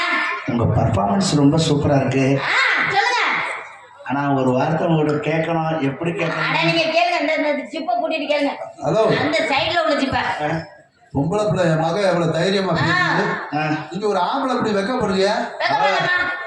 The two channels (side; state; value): both; identical; correlation 1.00